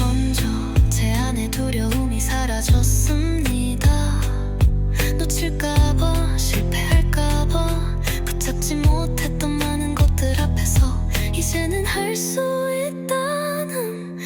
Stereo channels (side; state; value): both; identical; correlation 1.00